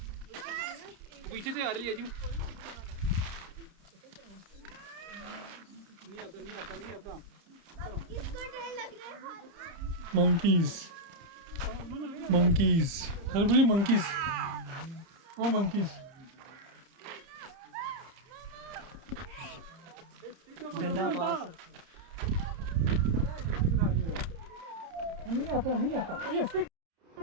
पीछे से आ रही है जी। नहीं आता नहीं आता नहीं आता। किसको डर लग रहा है? मंकीज मंकीज, अरे बोलिए मंकीज, ओ मंकीज। डंडा पास नहीं आता नहीं आता।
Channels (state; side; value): late; left; 30 ms